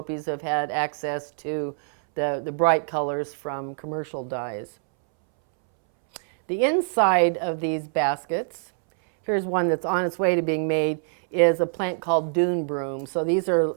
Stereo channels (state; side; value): silent; left; 62 dB below the other